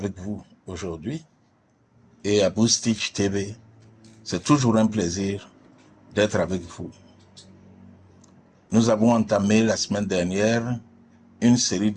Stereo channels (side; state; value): both; identical; correlation 1.00